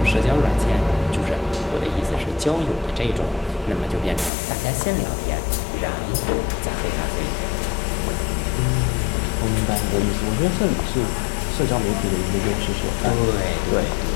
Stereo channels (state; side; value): drops out; right; at 4.3 s